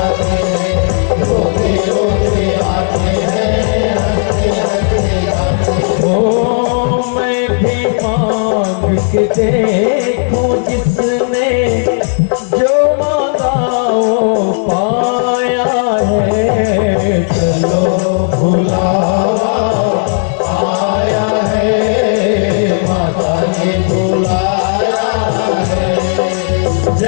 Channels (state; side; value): silent; right; digital silence